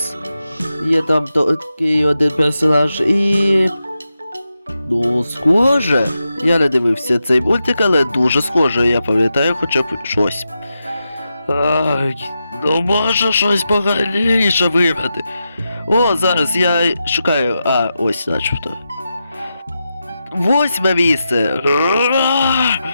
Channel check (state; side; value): inverted; both; correlation -0.88